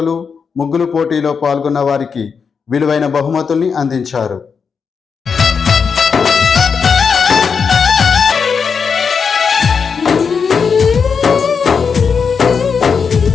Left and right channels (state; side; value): quieter; right; 5.9 dB